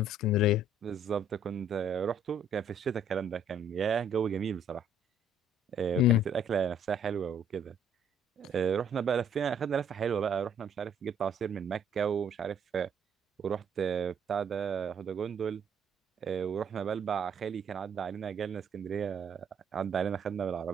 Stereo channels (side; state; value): both; normal; correlation 0.62